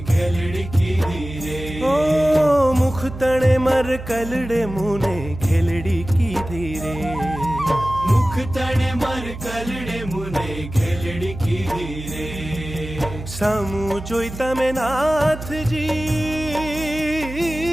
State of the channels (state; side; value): noise; right; hum, 11 dB below the sound